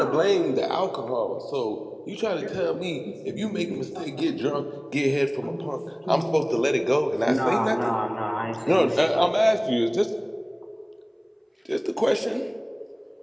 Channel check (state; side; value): identical; both; correlation 1.00